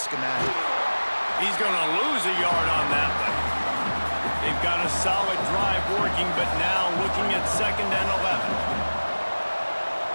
He's going to lose a yard on that one. They've got a solid drive working, but now looking at 2nd and 11.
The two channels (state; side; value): inverted; both; correlation -1.00